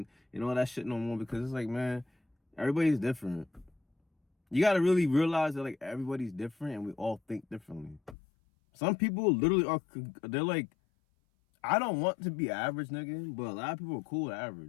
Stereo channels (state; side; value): drops out; right; at 8.2 s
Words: all that shit no more, because it's like, man, everybody's different. You gotta really realize that like everybody's different and we all think differently. Some people literally they're like, I don't want to be average, nigga, but a lot of people are cool with